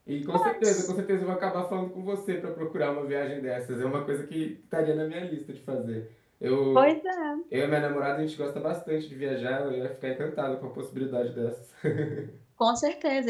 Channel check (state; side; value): identical; both; correlation 1.00